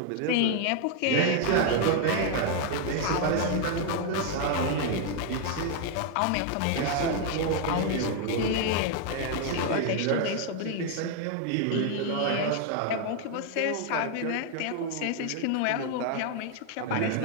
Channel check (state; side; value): different; both; correlation 0.01